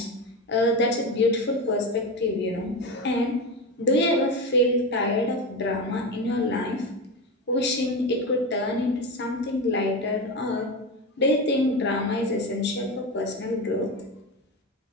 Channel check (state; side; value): normal; both; correlation 0.20